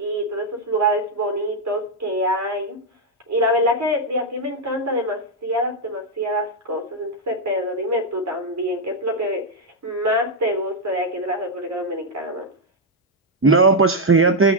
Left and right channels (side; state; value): both; normal; correlation 0.00